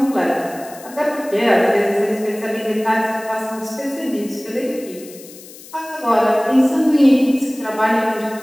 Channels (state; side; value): noise; left; hiss, 19 dB below the sound